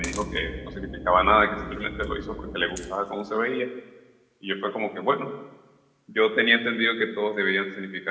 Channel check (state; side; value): identical; both; correlation 1.00